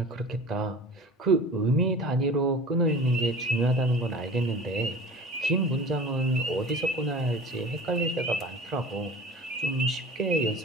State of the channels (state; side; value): normal; both; correlation 0.39